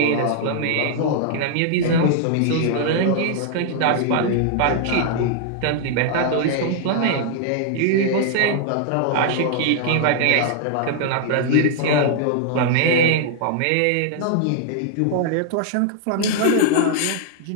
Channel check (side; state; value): both; different; correlation -0.01